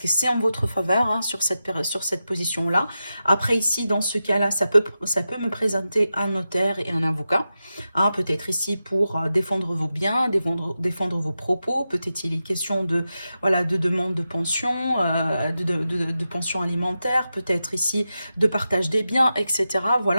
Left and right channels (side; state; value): both; inverted; correlation -0.91